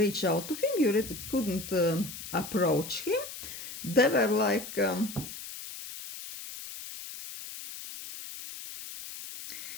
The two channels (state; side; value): noise; left; hiss, 11 dB below the sound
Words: out to him. You couldn't approach him. They were like